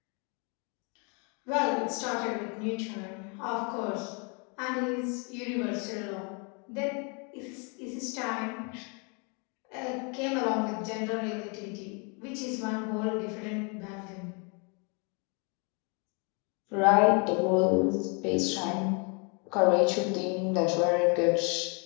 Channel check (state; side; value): quieter; right; 34.5 dB